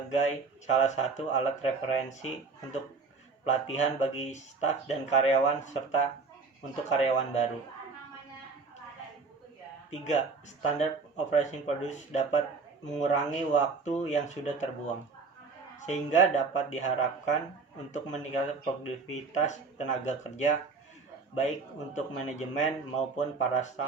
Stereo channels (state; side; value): quieter; left; 4.6 dB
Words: salah satu alat referensi untuk pelatihan bagi staf dan karyawan serta untuk karyawan baru. 3. Standard Operation Procedures dapat mengurangi waktu yang sudah terbuang, sehingga dapat diharapkan untuk meningkatkan produktivitas tenaga kerja baik untuk manajemen maupun para